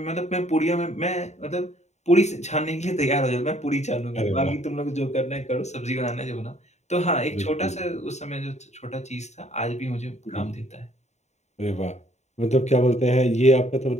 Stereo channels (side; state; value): right; late; 0.33 ms